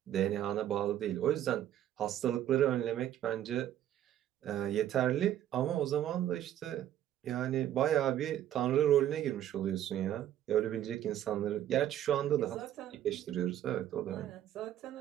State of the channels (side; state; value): left; quieter; 11.7 dB